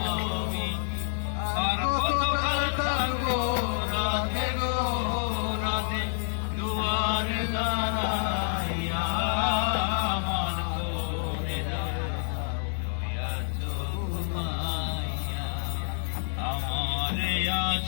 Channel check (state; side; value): silent; right; digital silence